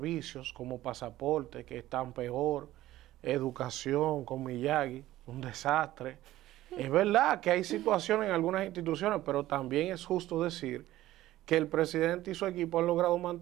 como pasaporte que están peor, educación con Miyagi, un desastre. Es verdad que hay situaciones en algunas instituciones, pero también es justo decir que el presidente y su equipo han logrado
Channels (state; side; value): quieter; left; 15.2 dB